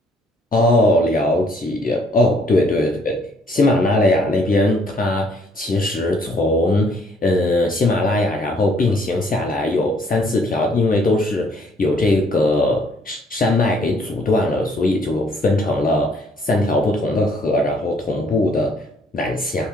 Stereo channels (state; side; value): normal; both; correlation 0.64